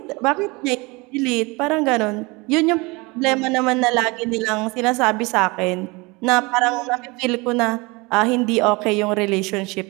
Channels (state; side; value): quieter; left; 25.5 dB